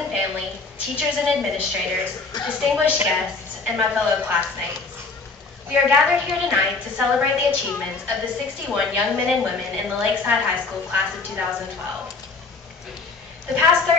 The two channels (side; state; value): right; quieter; 4.1 dB